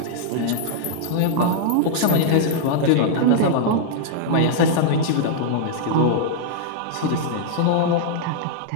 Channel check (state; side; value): different; both; correlation -0.01